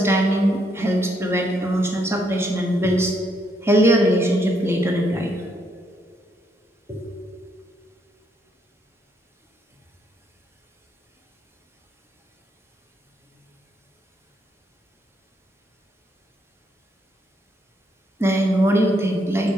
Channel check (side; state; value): both; normal; correlation 0.74